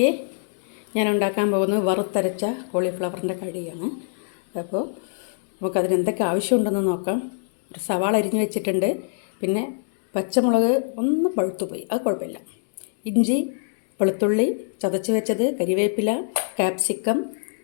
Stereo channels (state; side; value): silent; right; digital silence